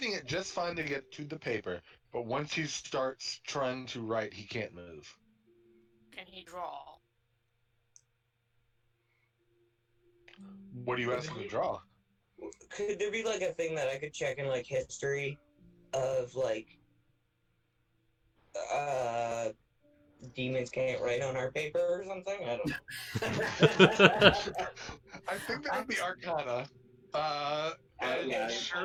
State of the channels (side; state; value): both; identical; correlation 1.00